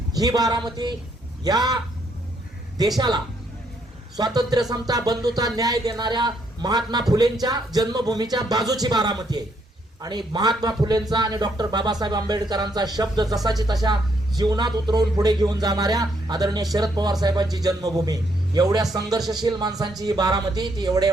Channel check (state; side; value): normal; both; correlation 0.73